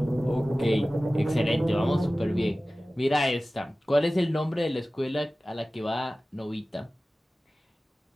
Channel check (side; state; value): both; normal; correlation 0.97